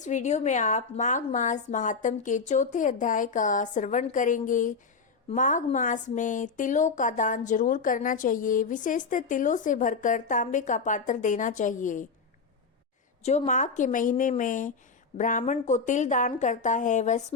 वीडियो में आप माघ मास महात्म के चौथे अध्याय का श्रवण करेंगे। माघ मास में तिलों का दान जरूर करना चाहिए, विशेषतः तिलों से भरकर तांबे का पात्र देना चाहिए। जो माघ के महीने में ब्राह्मण को तिल दान करता है वह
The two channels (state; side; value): quieter; right; 4.8 dB